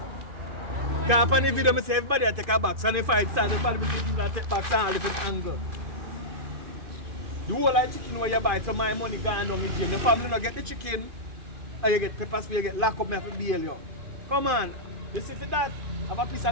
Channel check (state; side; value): late; left; 2.5 ms